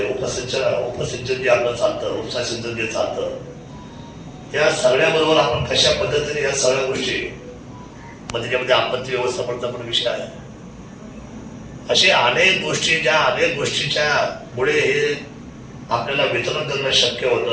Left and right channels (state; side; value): identical; both; correlation 1.00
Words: उपसिंचन जे आपलं चालतं, उपसा सिंचन जे चालतं, या सगळ्याबरोबर आपण कशा पद्धतीने या सगळ्या गोष्टी मग त्याच्यामध्ये आपत्ती व्यवस्थापनाचा पण विषय आहे. असे अनेक गोष्टी ज्या अनेक गोष्टीच्या मुळे हे आपल्याला वितरण करणं शक्य